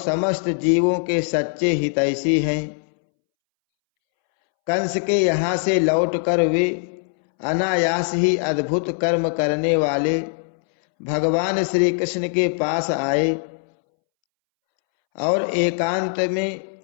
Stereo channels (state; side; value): silent; right; 65 dB below the other